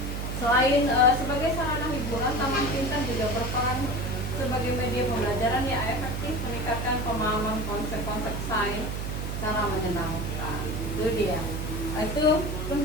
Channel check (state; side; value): noise; right; hum, 3 dB below the sound